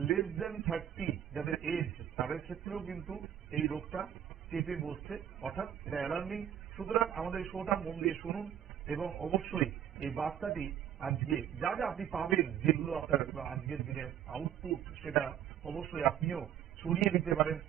লেস দেন 30 যাদের এজ, তাদের ক্ষেত্রেও কিন্তু এই রোগটা চেপে বসছে, অর্থাৎ এটা অ্যালার্মিং। সুতরাং আমাদের শোটা মন দিয়ে শুনুন, এবং অবশ্যই এই বার্তাটি আজকে যা যা আপনি পাবেন, যেগুলো আপনার আজকের দিনের আউটপুট, সেটা অবশ্যই আপনিও ছড়িয়ে দিতে পারেন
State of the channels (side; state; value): left; quieter; 10.1 dB